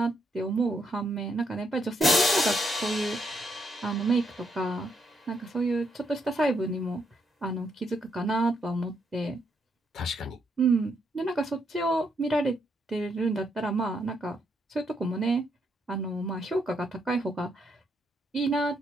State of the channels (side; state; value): both; normal; correlation 0.77